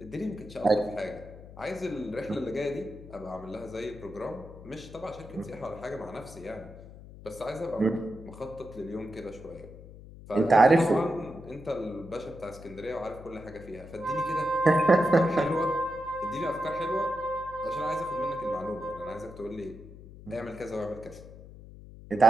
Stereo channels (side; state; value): left; noise; hum, 16 dB below the sound